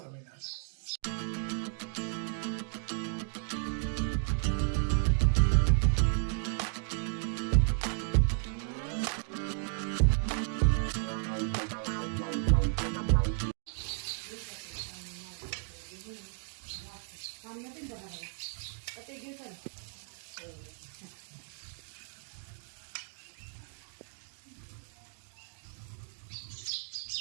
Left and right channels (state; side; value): silent; left; 55 dB below the other